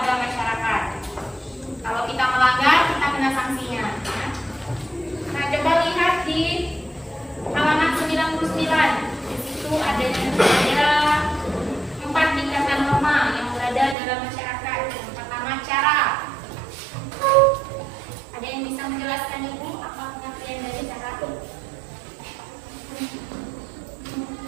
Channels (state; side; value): drops out; left; at 14.0 s